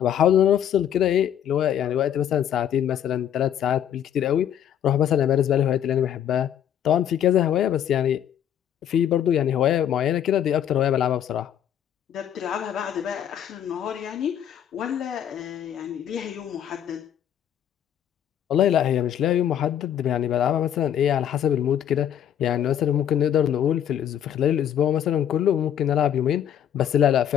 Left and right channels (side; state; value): right; quieter; 9.8 dB